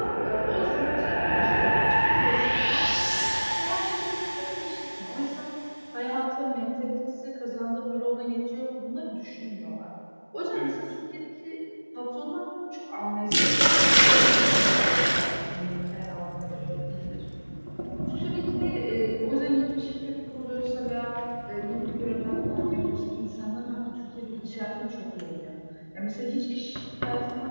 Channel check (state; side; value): inverted; both; correlation -1.00